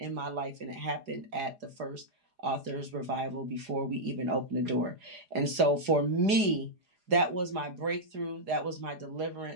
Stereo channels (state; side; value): late; left; 4.9 ms